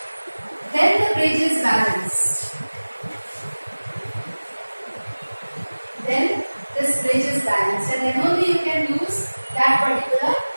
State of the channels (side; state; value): both; inverted; correlation -1.00